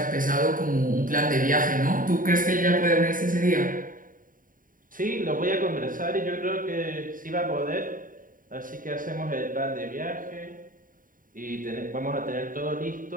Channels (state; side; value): late; left; 0.40 ms